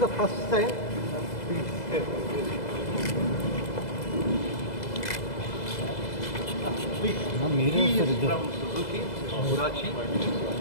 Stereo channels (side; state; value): right; late; 2.0 ms